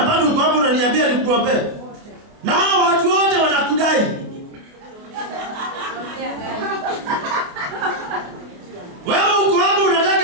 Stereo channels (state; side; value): late; left; 28 ms